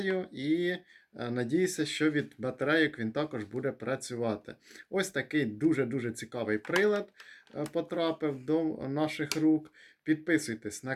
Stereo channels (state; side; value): identical; both; correlation 1.00